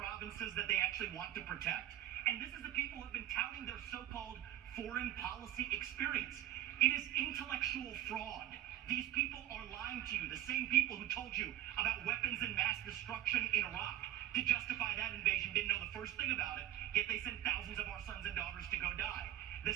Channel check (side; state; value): left; quieter; 13.3 dB